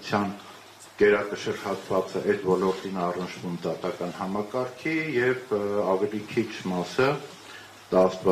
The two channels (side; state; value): both; identical; correlation 1.00